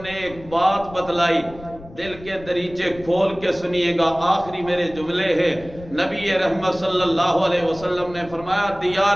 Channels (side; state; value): left; noise; rumble, 18 dB below the sound